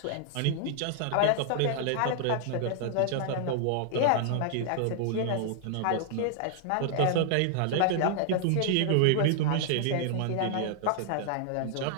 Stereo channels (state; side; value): different; both; correlation -0.01